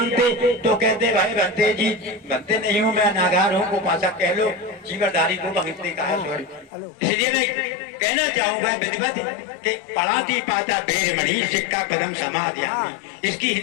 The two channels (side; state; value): right; drops out; at 6.7 s